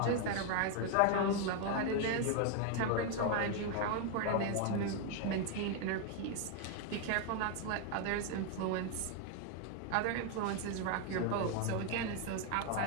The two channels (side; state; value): both; different; correlation 0.01